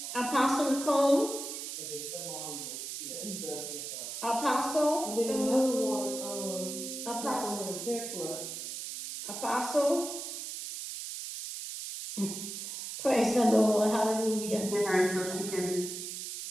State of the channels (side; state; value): right; noise; hiss, 7 dB below the sound